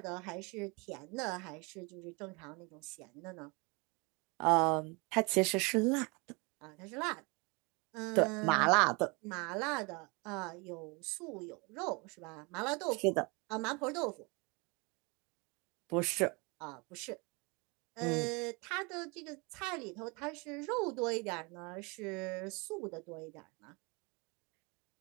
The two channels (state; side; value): quieter; left; 29.2 dB